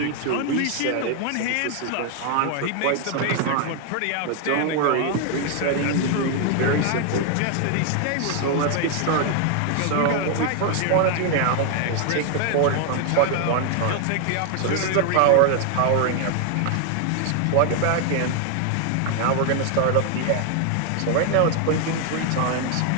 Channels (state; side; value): different; both; correlation 0.00